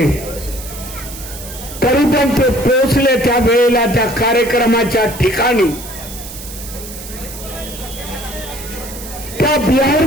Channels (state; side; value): noise; right; hiss, 13 dB below the sound